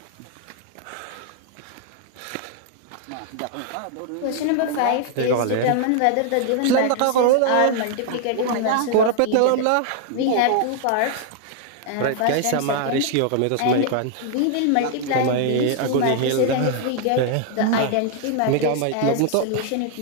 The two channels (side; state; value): both; different; correlation 0.00